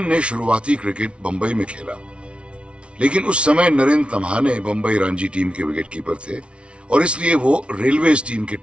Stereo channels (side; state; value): left; late; 0.060 ms